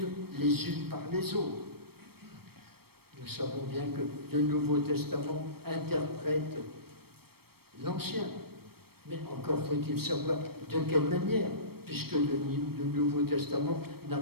les unes par les autres. Nous savons bien que le Nouveau Testament interprète l'Ancien. Mais encore faut-il savoir de quelle manière, puisque le Nouveau Testament n'a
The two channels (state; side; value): late; left; 0.95 ms